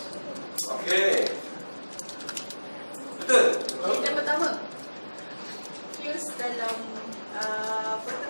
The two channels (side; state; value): both; inverted; correlation -1.00